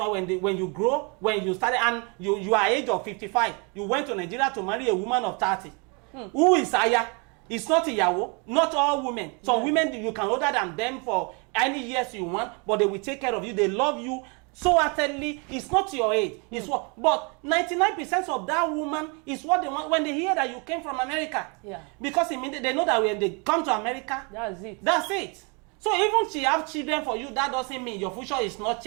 when you grow, when you started, and you are age of 55, you went to Nigeria to marry a woman of 30. Who is Aya? It's not Iyawo. Not all women. Some women, you can older than them for any years you want, but they will take care of you. They love you so utterly. It's not your age. It's what. But 99% of that woman is what they want when they hear that you came from America. Because immediately they know that when they come to America, that's it. So even she have children for you, that doesn't mean your future is not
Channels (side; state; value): left; quieter; 32.9 dB